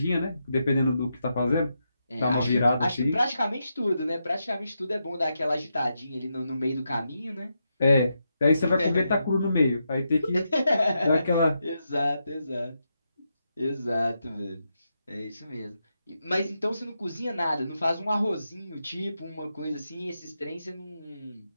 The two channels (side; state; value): both; inverted; correlation -0.84